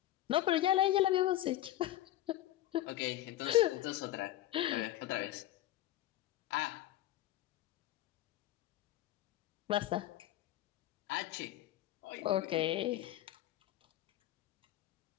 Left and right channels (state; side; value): quieter; right; 14.2 dB